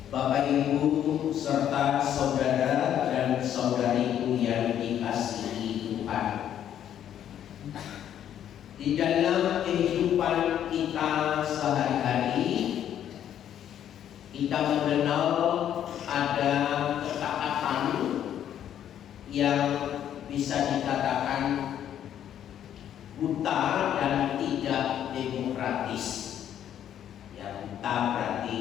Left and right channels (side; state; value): right; quieter; 10.2 dB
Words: Bapak Ibu serta saudara dan saudariku yang dikasihi Tuhan, di dalam kehidupan kita sehari-hari kita mengenal ada ketaatan yang bisa dikatakan buta dan tidak demokratis. Yang buta